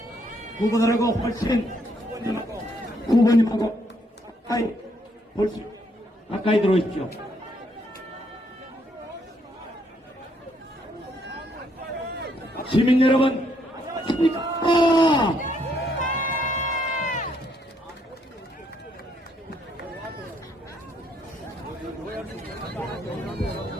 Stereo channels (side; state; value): both; normal; correlation 0.72